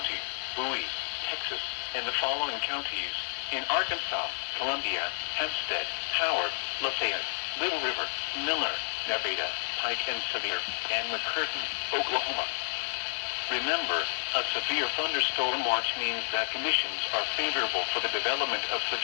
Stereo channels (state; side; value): silent; right; digital silence